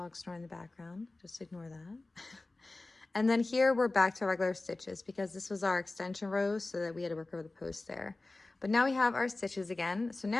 snoring in the background, just ignore that. And then here we're back to regular stitches because this was our extension row, so that we had to work over the post there. But now we have our stitches again. So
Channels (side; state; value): right; quieter; 3.1 dB